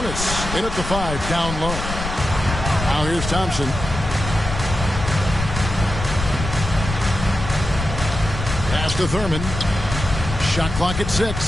in at the 5, down low. Now here's Thompson. Pass to Thurman. Shot clock at 6.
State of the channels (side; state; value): left; noise; rumble, 6 dB below the sound